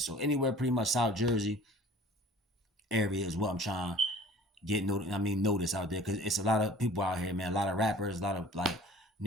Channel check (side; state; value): both; normal; correlation 0.47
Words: anywhere pretty much South Jersey area is what I'm trying get notice out there, because it's a lot of people out here, man. A lot of rappers, a lot of like